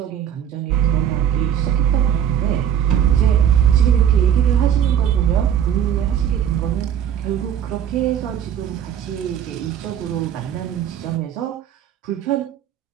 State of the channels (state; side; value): quieter; left; 9.5 dB